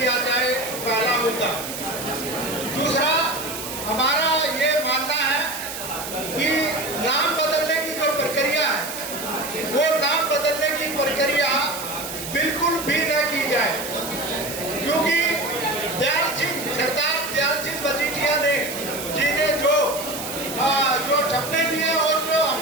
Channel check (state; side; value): noise; right; hiss, 8 dB below the sound